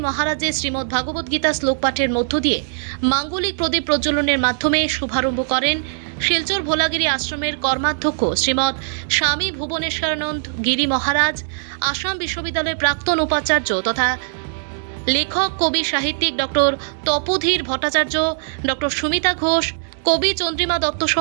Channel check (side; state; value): left; silent; digital silence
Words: মহারাজের শ্রীমৎ ভাগবত গীতা শ্লোক পাঠের মধ্য দিয়ে মাঙ্গলিক প্রদীপ প্রজ্বলনের মাধ্যমে শুভারম্ভ করেন শিলচর ভোলাগিরি আশ্রমের কর্মাধ্যক্ষ শ্রীমৎ স্বামী ভুবনেশ্বরানন্দ গিরি মহারাজ, আসাম বিশ্ববিদ্যালয়ের প্রাক্তন উপাচার্য তথা লেখক কবি সাহিত্যিক ডক্টর তপোধীর ভট্টাচার্য, ডক্টর সুমিতা ঘোষ, কবি চন্দ্রিমা দত্ত